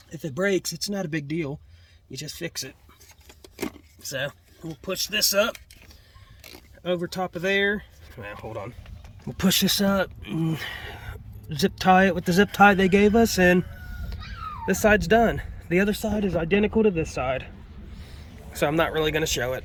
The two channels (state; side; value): identical; both; correlation 1.00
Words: If it breaks, it's not a big deal. You just fix it. So we'll push this up over top of there. Now, hold on. We'll push this up, and zip tie it with the zip tie they gave us, and this side's done. The other side is identical to this side, so I'm not really going to show it.